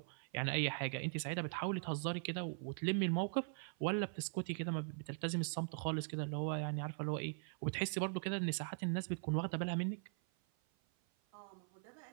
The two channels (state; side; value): silent; left; 50 dB below the other